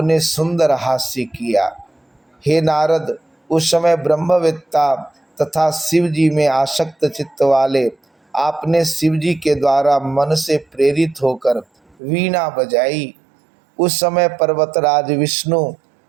सुंदर हास्य किया। हे नारद, उस समय ब्रह्मवेत्ता तथा शिव जी में आसक्त चित्त वाले आपने शिव जी के द्वारा मन से प्रेरित होकर वीणा बजाई। उस समय पर्वतराज विष्णु,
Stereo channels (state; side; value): drops out; left; at 12.0 s